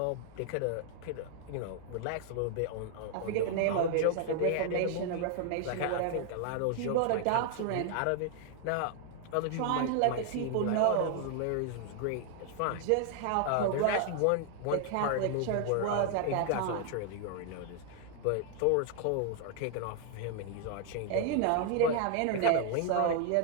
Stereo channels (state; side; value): different; both; correlation 0.00